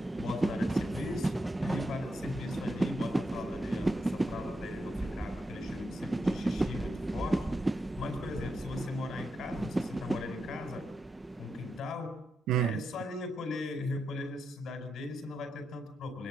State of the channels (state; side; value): normal; both; correlation 0.85